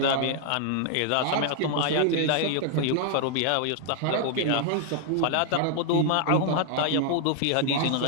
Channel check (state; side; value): different; both; correlation 0.00